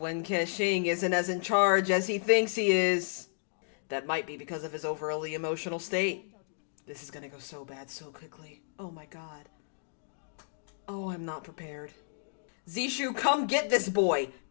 Kexing isn't as in charge as he thinks he is. That might be because of his overly emotional state. This is gonna go so bad so quickly. Oh my god. Oh, I'm not prepared. Zishu, come get this boy.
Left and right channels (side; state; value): right; silent; digital silence